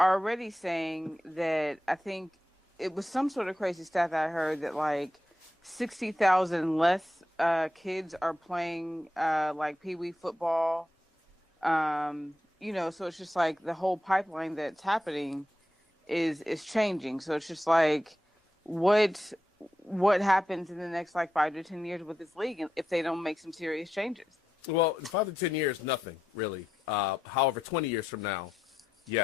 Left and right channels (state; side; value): normal; both; correlation 0.86